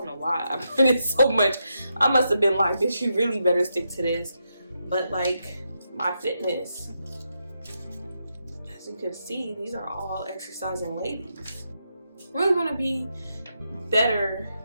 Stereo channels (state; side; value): inverted; both; correlation -0.83